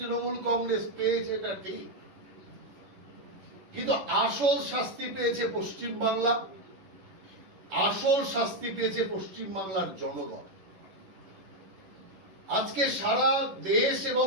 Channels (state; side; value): late; left; 11 ms